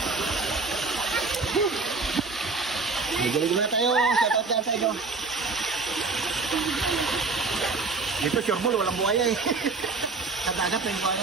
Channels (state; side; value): quieter; left; 4.1 dB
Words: Maligo na tayo. Shout out yan sa inyo. Dito, Chorbol, walang buhaya eh. Katagat na yung